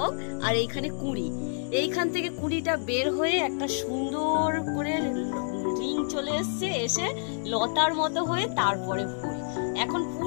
আর এইখানে কুঁড়ি। এইখান থেকে কুঁড়িটা বের হয়ে একটা সুন্দর করে রিং চলে এসছে, এসে লতার মতো হয়ে তারপরে ফুল। এখন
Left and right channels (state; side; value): silent; right; digital silence